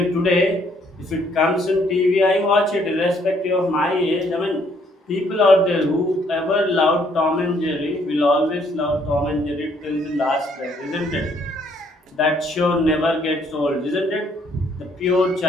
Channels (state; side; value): normal; both; correlation 0.67